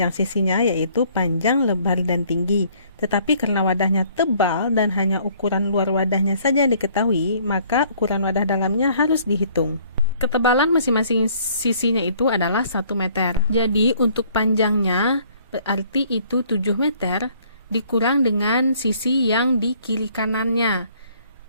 sisinya, yaitu panjang, lebar, dan tinggi. Tetapi karena wadahnya tebal dan hanya ukuran luar wadahnya saja diketahui, maka ukuran wadah dalamnya harus dihitung. Ketebalan masing-masing sisinya itu adalah 1 meter. Jadi untuk panjangnya berarti itu 7 meter, dikurang dengan sisi yang di kiri kanannya.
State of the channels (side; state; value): both; inverted; correlation -0.60